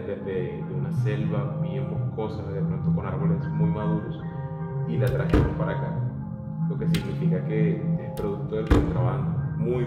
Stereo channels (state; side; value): identical; both; correlation 1.00